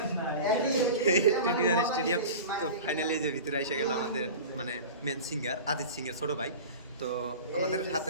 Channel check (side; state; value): both; inverted; correlation -0.34